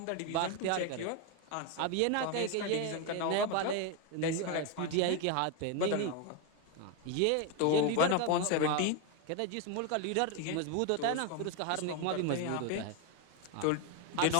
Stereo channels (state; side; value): different; both; correlation 0.02